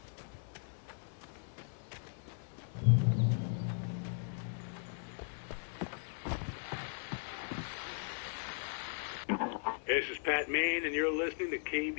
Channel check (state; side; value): silent; right; digital silence